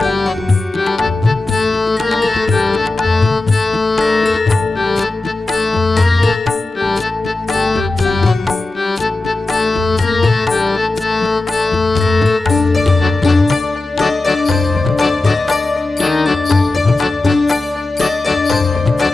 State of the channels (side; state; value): right; quieter; 3.0 dB